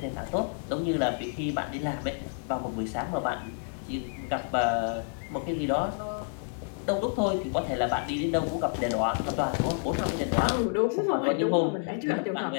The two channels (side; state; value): right; silent; 58 dB below the other